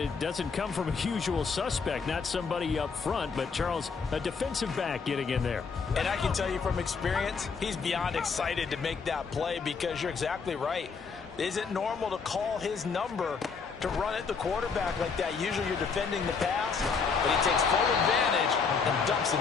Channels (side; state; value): right; quieter; 5.3 dB